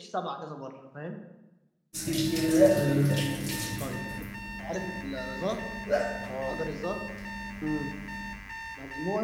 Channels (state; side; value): identical; both; correlation 1.00